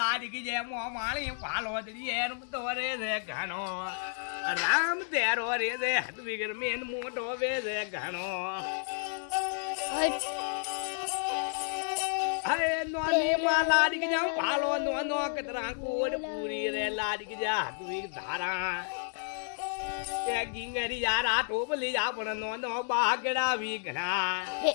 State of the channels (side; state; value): right; silent; digital silence